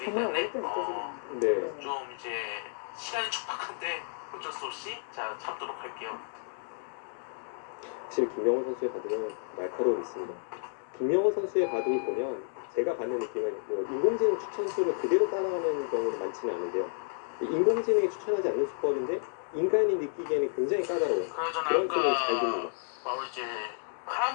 정말 때문에, 어렵게 느껴지겠는데. 네. 좀 이제 시간이 촉박한데 어쩔 수 없이 자 참도록 할게요. 확실히 김명호 선수의 바둑은 날카로움이 있습니다. 김명호 선수의 바둑을 보면 제가 받는 느낌은 뭐 인공지능 추천수를 그대로 따라가는 경우는 많지는 않은데요. 인공지능이 추천하지 않는 수법인데 인간이 느끼기에는 굉장히 까다로운 그런 수를 잘 둡니다. 바로 이제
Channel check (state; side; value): silent; right; digital silence